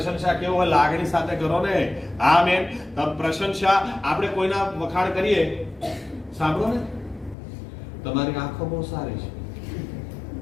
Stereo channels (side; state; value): right; drops out; at 7.4 s